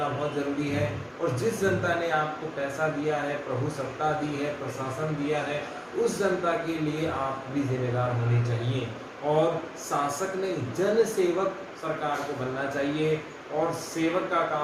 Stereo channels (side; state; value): both; identical; correlation 1.00